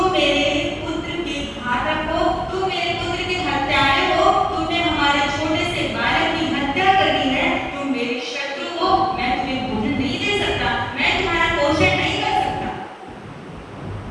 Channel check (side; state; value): both; identical; correlation 1.00